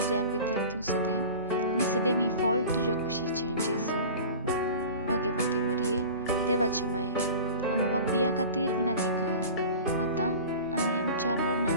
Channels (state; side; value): inverted; both; correlation -0.38